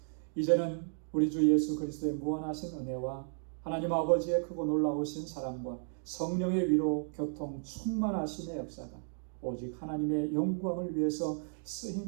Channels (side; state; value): left; silent; digital silence